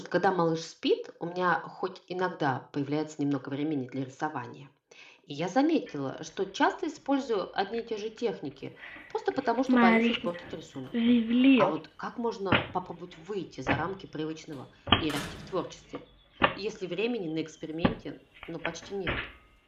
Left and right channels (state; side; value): identical; both; correlation 1.00